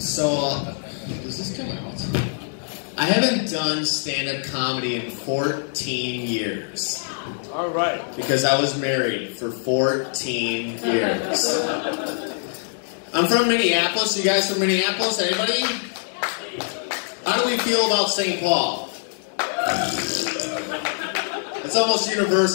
does this come out? I haven't done stand-up comedy in 14 years. All right. Because I was married for 14 years. I'm from Minneapolis. You guys from Minneapolis? Anybody? How do we feel about St. Paul? It's almost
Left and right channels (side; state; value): right; silent; digital silence